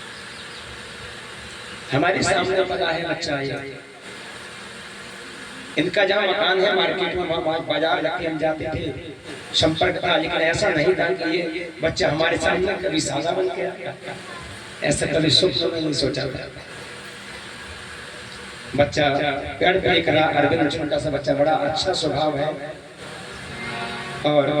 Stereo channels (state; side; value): identical; both; correlation 1.00